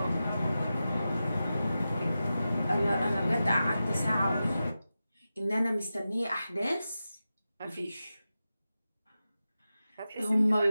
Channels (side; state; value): both; inverted; correlation -0.92